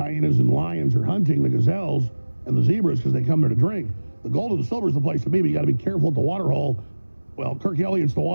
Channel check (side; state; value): both; inverted; correlation -1.00